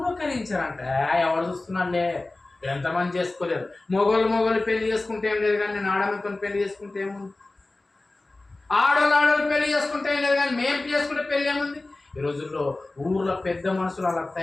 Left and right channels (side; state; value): right; quieter; 3.0 dB